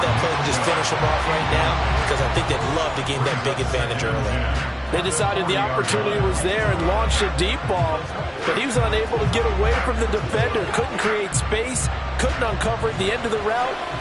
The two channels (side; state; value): both; identical; correlation 1.00